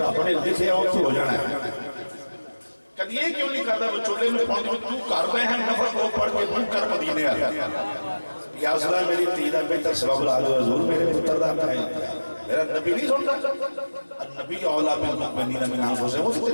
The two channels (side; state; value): both; inverted; correlation -1.00